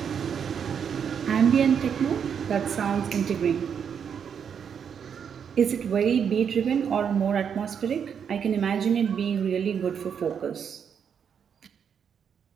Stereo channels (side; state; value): left; quieter; 7.5 dB